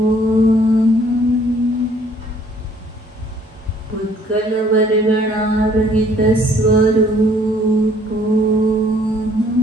उत्कल वर्गणारहित स्वरूप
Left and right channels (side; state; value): both; normal; correlation 0.60